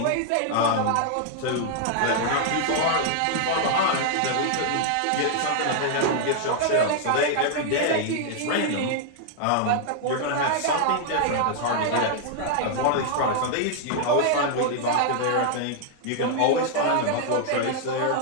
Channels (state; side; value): different; both; correlation 0.00